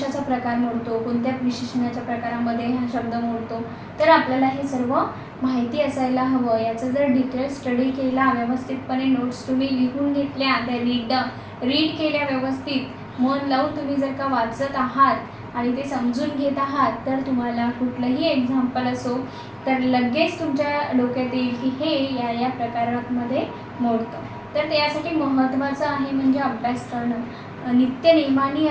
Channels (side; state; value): both; identical; correlation 1.00